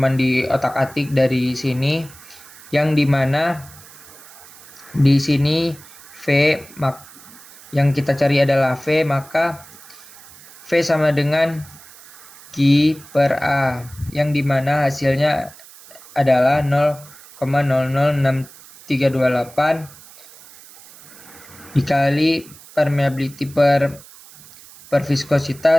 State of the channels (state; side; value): noise; right; hiss, 21 dB below the sound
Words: di otak-atik dari sini, yang dimana di sini yang kita cari adalah V, maka V sama dengan Q per A, yang dimana hasilnya adalah 0,006328 dikali permeability per